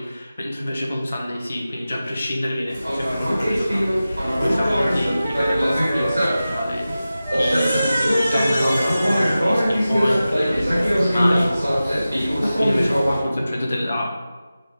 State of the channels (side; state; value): both; inverted; correlation -0.95